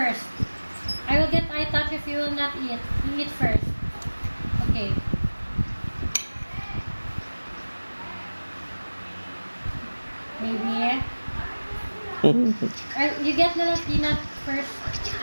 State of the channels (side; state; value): both; inverted; correlation -1.00